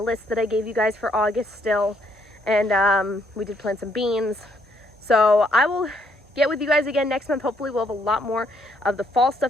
that I gave you guys for August still. And we did plant some beans. So I will get with you guys again next month. Hopefully we'll have a lot more of the fall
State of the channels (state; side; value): normal; both; correlation 0.71